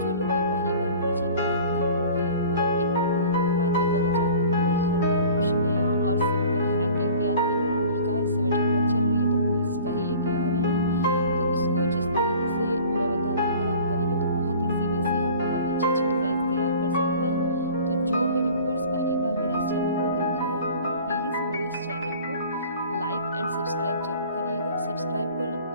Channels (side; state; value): both; inverted; correlation -0.45